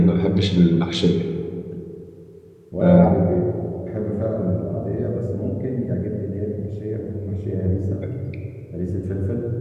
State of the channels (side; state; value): both; identical; correlation 1.00